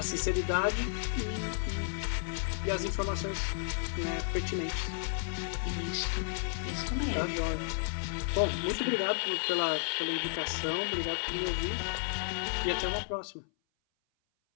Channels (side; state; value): right; silent; 56 dB below the other